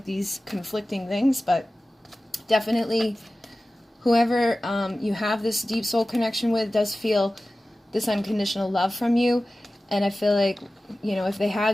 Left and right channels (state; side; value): normal; both; correlation 0.96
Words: these conflicting things. But definitely whoever you have this deep soul connection with does feel this unconditional love from you. And I feel like, you know, if they